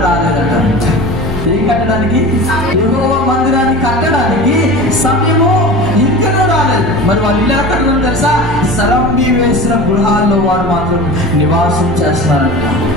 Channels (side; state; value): both; normal; correlation 0.34